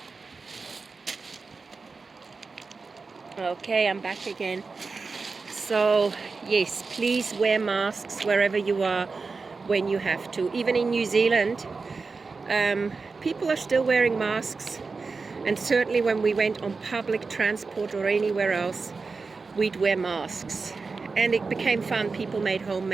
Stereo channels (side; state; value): left; quieter; 4.3 dB